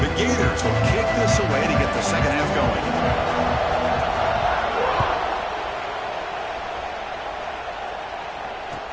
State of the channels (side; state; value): both; identical; correlation 1.00